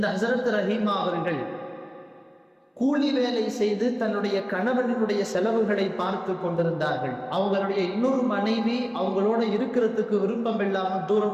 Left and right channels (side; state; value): both; identical; correlation 1.00